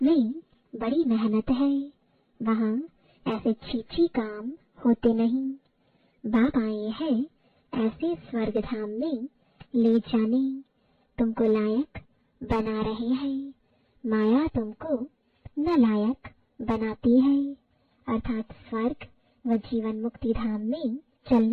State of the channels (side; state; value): both; identical; correlation 1.00